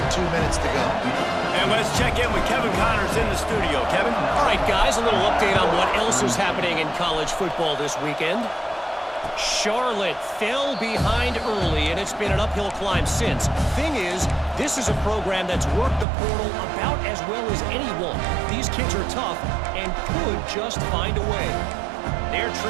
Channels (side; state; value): left; drops out; at 16.1 s